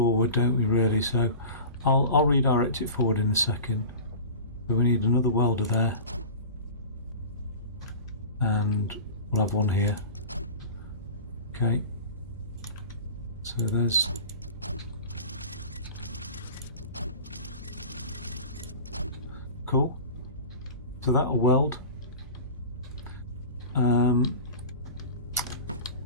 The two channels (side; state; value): both; inverted; correlation -0.36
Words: don't we, really? So I'll redirect it forward in a second. But we need another welder there. And we'll have one here. Okay. So there's... Cool. So that'll weld.